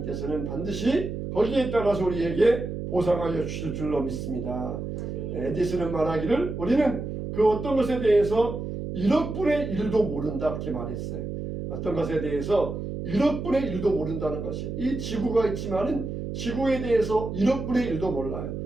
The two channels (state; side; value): noise; right; hum, 5 dB below the sound